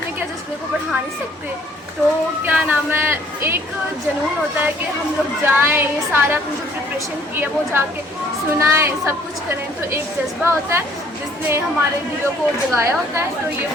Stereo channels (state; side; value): normal; both; correlation 0.60